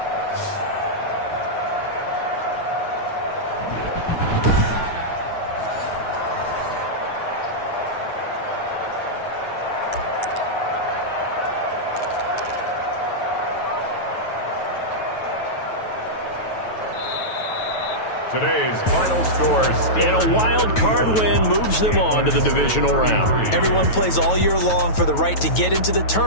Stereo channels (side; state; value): right; late; 9.2 ms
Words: Today's final score, And a wild card win moves them on to the divisional round. Everyone plays all year long for the right to get into the